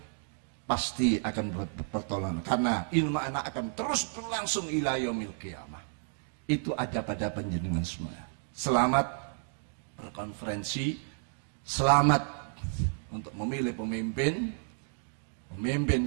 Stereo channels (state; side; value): silent; left; 57 dB below the other